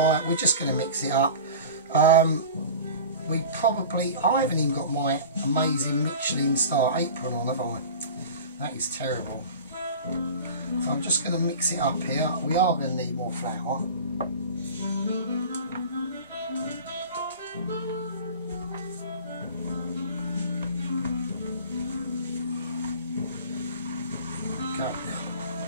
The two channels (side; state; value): both; inverted; correlation -0.37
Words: We're just going to mix it up. I haven't even got my amazing Michelin star apron on, have I? That is terrible. So I'm just going to mix it up here. We are going to need more flour.